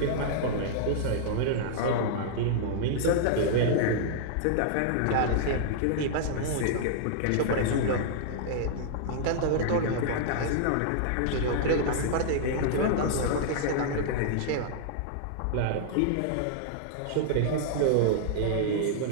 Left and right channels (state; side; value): different; both; correlation -0.01